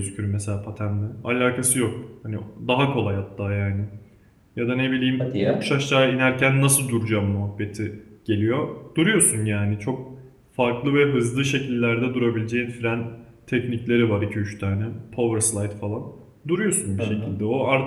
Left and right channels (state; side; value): identical; both; correlation 1.00